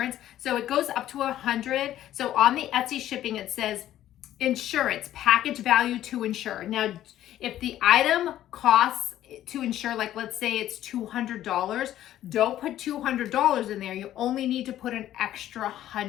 So it goes up to 100. So on the Etsy shipping, it says insurance, package value to insure. Now, if the item costs to insure, like let's say it's $200, don't put $200 in there. You only need to put an extra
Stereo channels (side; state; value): right; quieter; 12.6 dB